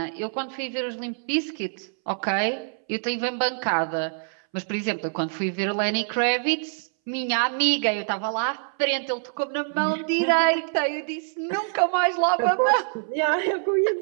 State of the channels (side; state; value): left; silent; 62 dB below the other